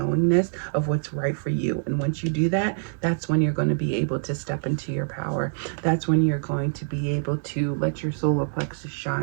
of what's right for you. And once you do that, that's when you're going to be able to step into your power. That's when you're going to be able to let your solar plexus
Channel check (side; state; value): left; silent; 62 dB below the other